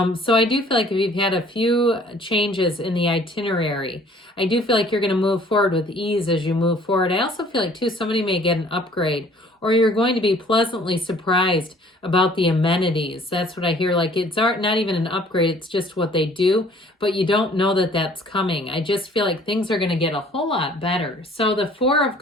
So I do feel like if you've had a few changes in the itinerary, I do feel like you're going to move forward with ease as you move forward. I also feel like too, somebody may get an upgrade, or you're going to be pleasantly surprised about the amenities. That's what I hear. Like it's not even an upgrade. It's just what they do, but you don't know that that's coming. I just feel like things are going to get a whole lot better. So the Four of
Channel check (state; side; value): normal; both; correlation 0.55